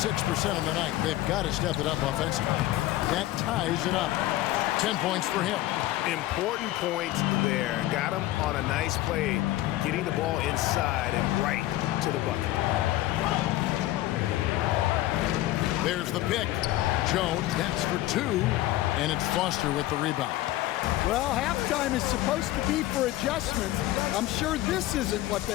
of the night, they've got to step it up offensively. That ties it up. 10 points for him. Important points there. Got him on a nice play, getting the ball inside and right to the bucket. There's the pick. Jones hits for 2, and it's Foster with the rebound. Well, halftime is supposed to be for adjustments. I'm sure this isn't what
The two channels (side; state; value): right; quieter; 15.8 dB